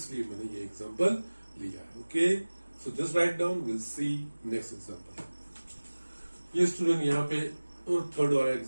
मैंने ये एग्जांपल लिया है. Okay, so just write down, will see next example. ये स्टूडेंट यहाँ पे थर्ड वाला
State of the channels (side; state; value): both; inverted; correlation -1.00